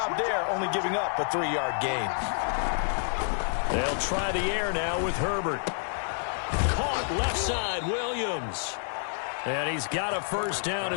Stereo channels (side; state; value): right; silent; digital silence